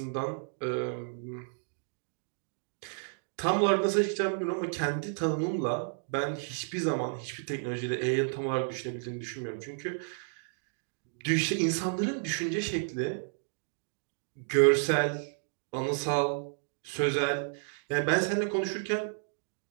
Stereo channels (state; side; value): silent; left; digital silence